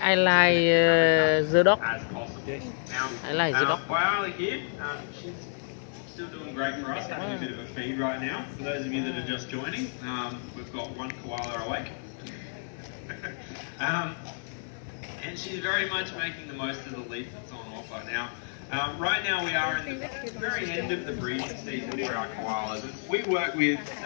like the dog. As possible. Yes. Now, I like the dog. Koala here, she's still doing great for us, having a bit of a feed right now. For those of you that are just joining, we've got one koala awake. And she's very much making the most of the leaf that's on offer. Now, right now we are in the very end of the breeding season for our koalas. We work with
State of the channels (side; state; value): right; silent; 58 dB below the other